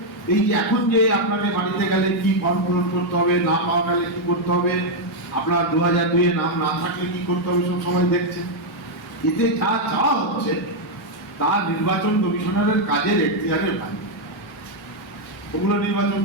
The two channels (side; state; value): both; normal; correlation -0.01